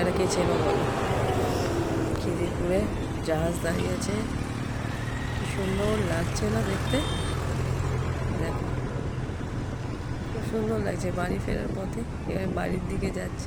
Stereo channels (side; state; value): both; identical; correlation 1.00